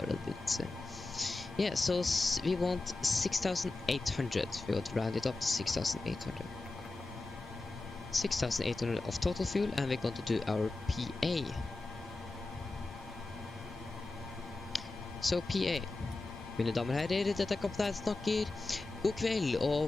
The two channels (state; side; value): quieter; right; 3.2 dB